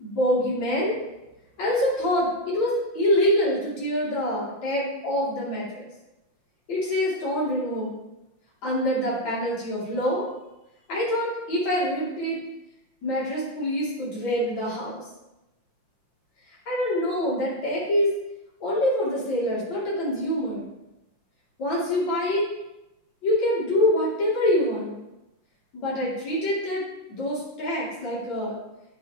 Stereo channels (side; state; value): right; late; 5.7 ms